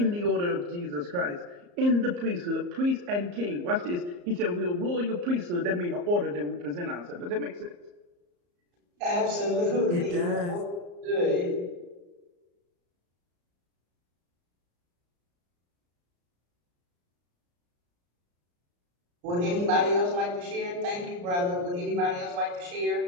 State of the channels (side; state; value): left; late; 34 ms